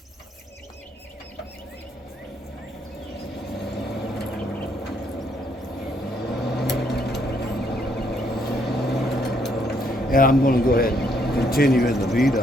And I'm going to go ahead and continue in the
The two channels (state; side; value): normal; both; correlation 0.71